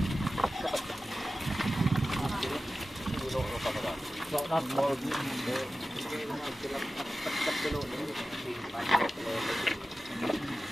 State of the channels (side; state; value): both; normal; correlation 0.94